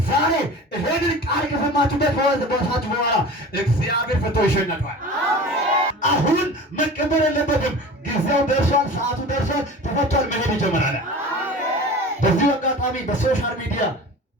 ዛሬ ይሄንን ቃል ከሰማችሁበት በወሳችሁ በኋላ እግዚአብሔር ፈቶ ይሸኛችኋል። አሁን መቀበል የለበትም። ጊዜው ደርሷል፣ ሰዓቱ ደርሷል፣ ተፈቷል፣ መሄድ ይጀምራል። በዚህ አጋጣሚ በሶሻል ሚዲያ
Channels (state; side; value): normal; both; correlation 0.37